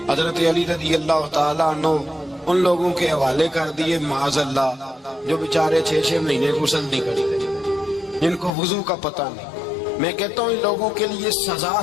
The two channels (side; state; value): right; drops out; at 8.5 s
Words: حضرت علی رضی اللہ تعالیٰ عنہ ان لوگوں کے حوالے کر دیے معاذ اللہ جو بیچارے 6 مہینے غسل نہیں کرتے، جن کو وضو کا پتہ نہیں۔ میں کہتا ہوں ان لوگوں کے لیے سزا